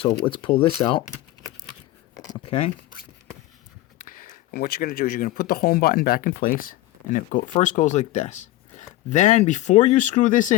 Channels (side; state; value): right; quieter; 16.3 dB